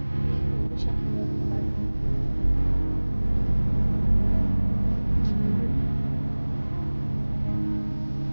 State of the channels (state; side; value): inverted; both; correlation -1.00